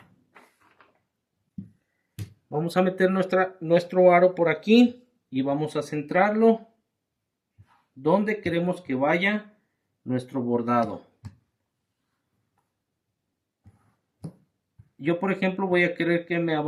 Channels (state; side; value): identical; both; correlation 1.00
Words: Vamos a meter nuestro aro por aquí y vamos a centrarlo donde queremos que vaya nuestro bordado. Yo, por ejemplo, voy a querer que me